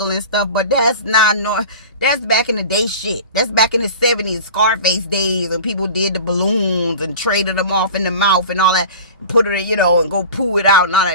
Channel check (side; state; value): both; inverted; correlation -0.37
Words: and stuff, but that's that's back in the day shit. That's back in the 70s, Scarface days, and people did the balloons and traded them off in the mouth and all that, put it, you know, and go poo it out and all